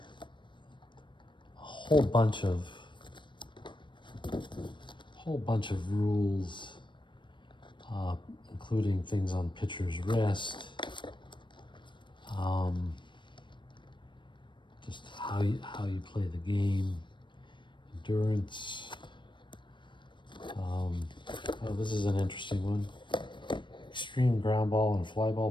whole bunch of rules, including things on pitcher's rest, just how you play the game, endurance. Oh, this is an interesting one. Extreme ground ball and fly ball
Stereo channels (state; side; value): late; right; 0.23 ms